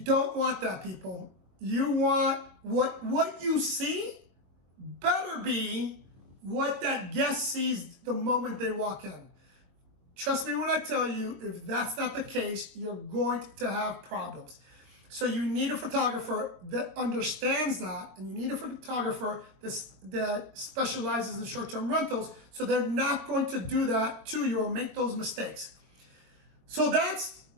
want that, people. You want what you see better be what that guest sees the moment they walk in. Trust me when I tell you, if that's not the case, you're going to have problems. So you need a photographer that understands that, and you need a photographer that specializes in short-term rentals, so they're not going to do that to you or make those mistakes. So that's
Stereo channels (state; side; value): late; left; 22 ms